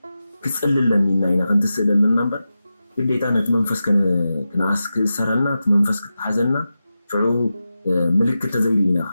ክጽልይ ኣለኒ ኢና ክንትስእል ኣለና እምበር ግዴታ ነቲ መንፈስ ክነኣስ ክእሰረልና እቲ መንፈስ ክትሓዘልና ሽዑ ምልክት ተዘይርኢና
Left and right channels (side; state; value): both; inverted; correlation -0.92